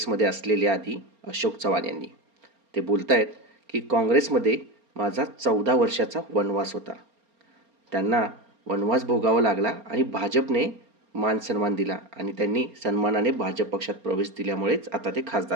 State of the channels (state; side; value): late; left; 4.3 ms